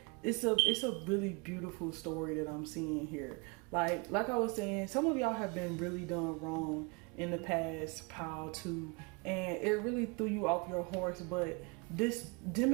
it's a really beautiful story that I'm seeing here. Like I was saying, some of y'all have been really done wrong in the past pile too, and it really threw you off your horse. But this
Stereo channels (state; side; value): quieter; left; 30.1 dB